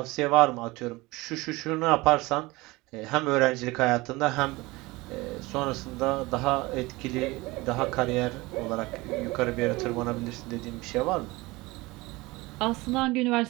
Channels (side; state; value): left; quieter; 21.9 dB